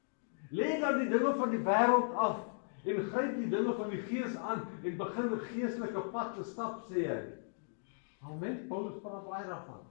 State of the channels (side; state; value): right; silent; digital silence